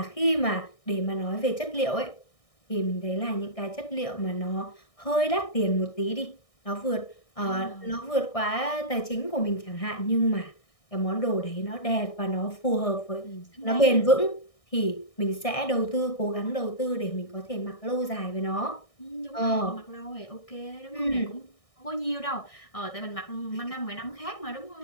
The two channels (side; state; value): right; late; 1.6 ms